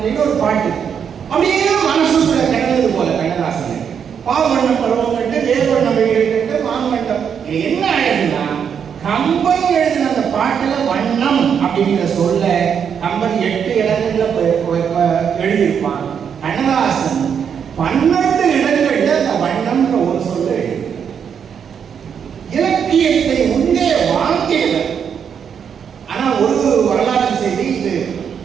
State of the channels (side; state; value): left; quieter; 7.5 dB